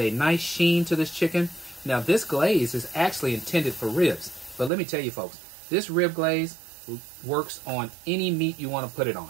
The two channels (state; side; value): drops out; left; at 4.7 s